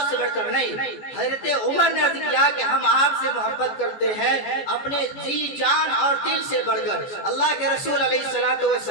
سے بڑھ کر نہیں. حضرت عمر نے عرض کیا کہ ہم آپ سے محبت کرتے ہیں اپنے جی جان اور دل سے بڑھ کر. اللہ کے رسول علیہ الصلوۃ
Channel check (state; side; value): late; right; 14 ms